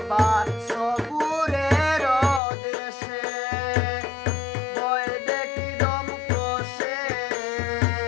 সবুরের দেশে বয়ে দেখি দম কষে,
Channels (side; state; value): right; drops out; at 2.4 s